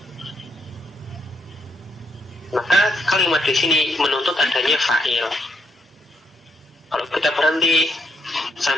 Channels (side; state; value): both; normal; correlation 0.75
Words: maka kalimat di sini menuntut adanya fa'il. Kalau kita berhenti